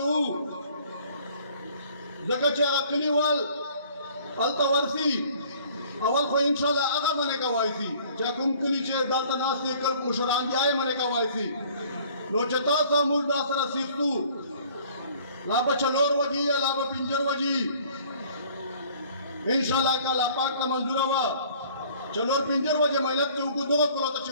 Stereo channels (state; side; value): inverted; both; correlation -0.55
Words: زکا چھے آگا کلی وال التا ورسی اول خو انشاءاللہ آگا منے کا وائسی چاہ کم کلی چھے دالتا ناسی کل مشران بھی آئے منے کا وائسی نو چھے تاسا مول دا سر سیختو لابا چلور وجی یا لابا پنجر وجی انشاءاللہ کا لاپاک تا منظور ہوا چلور پنجر وجی محنت چھے انکو دو کرو تا